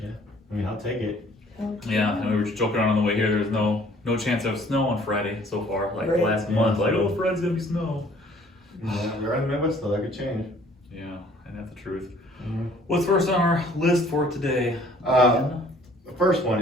Yeah, I mean, I'll take it. Yeah, and we were just joking around on the way here. There's no chance of snow on Friday so far. Like Right. last month, like, oh, Friday's gonna be snow. Yeah, we're in the Midwest though, that could change. Yeah, and that's the truth. Mm-hmm. What's first on our list for today? The first one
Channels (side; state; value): both; normal; correlation 0.56